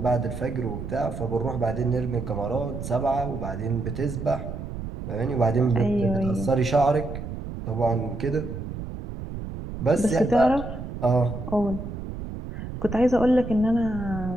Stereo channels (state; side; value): noise; right; rumble, 8 dB below the sound